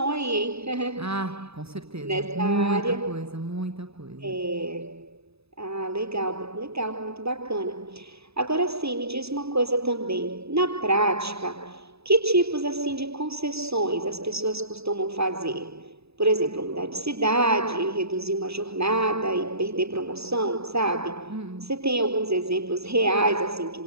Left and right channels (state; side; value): late; left; 0.79 ms